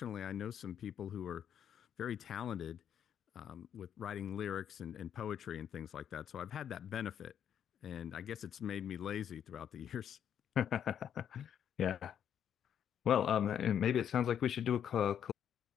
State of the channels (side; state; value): right; quieter; 9.1 dB